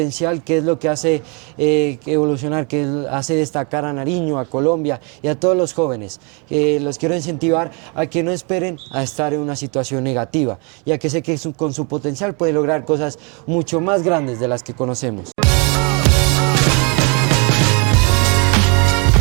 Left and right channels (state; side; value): quieter; left; 33.3 dB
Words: que es lo que hace evolucionar, que hace destacar a Nariño, a Colombia y a todos los jóvenes. Los quiero incentivar a que no esperen a estar en una situación negativa, ya que sé que con su potencial pueden lograr cosas mucho más grandes de las que conocemos.